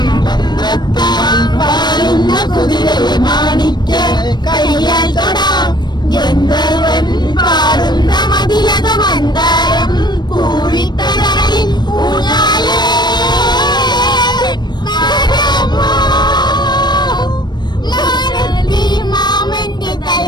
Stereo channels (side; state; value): right; late; 0.21 ms